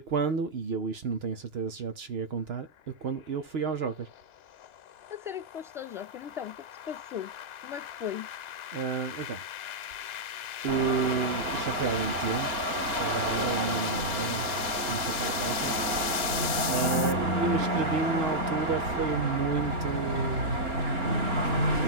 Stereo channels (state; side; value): late; left; 2.9 ms